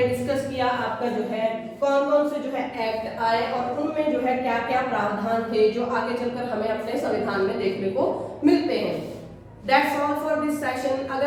डिस्कस किया आपका जो है कौन कौन से जो है एक्ट आए और उनमें जो है क्या क्या प्रावधान थे जो आगे चलकर हमें अपने संविधान में देखने को मिलते हैं। That's all for this session. अगर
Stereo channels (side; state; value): both; identical; correlation 1.00